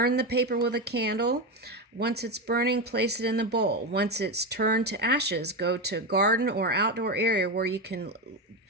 the paper with a candle. Once it's burning, place it in the bowl. Once it's turned to ashes, go to a garden or outdoor area where you can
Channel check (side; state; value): both; normal; correlation 0.15